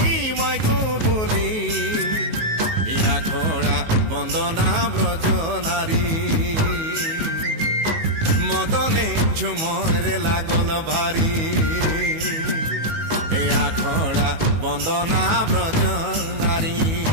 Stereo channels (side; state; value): left; late; 19 ms